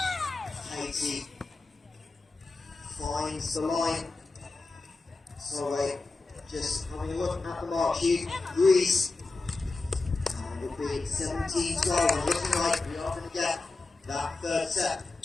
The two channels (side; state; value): right; quieter; 3.5 dB